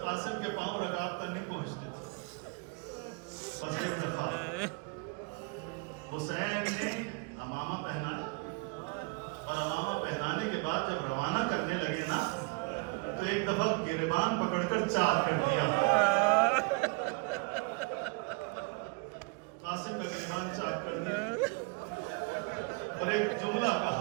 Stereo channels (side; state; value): left; quieter; 30.3 dB